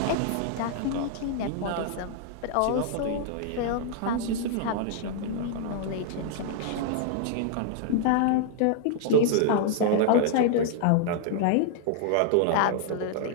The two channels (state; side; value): different; both; correlation -0.01